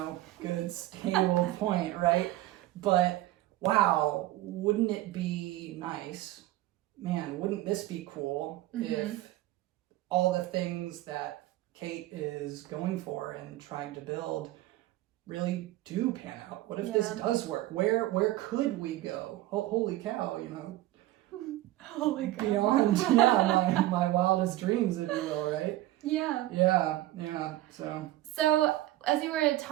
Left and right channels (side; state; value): left; quieter; 16.1 dB